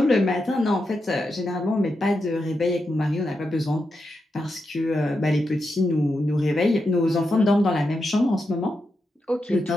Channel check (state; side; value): normal; both; correlation 0.86